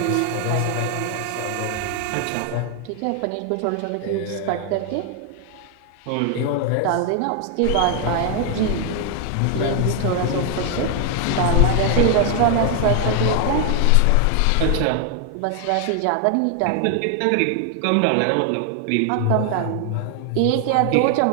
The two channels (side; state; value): both; different; correlation 0.00